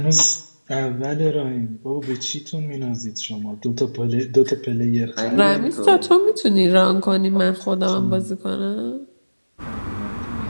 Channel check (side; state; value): both; inverted; correlation -1.00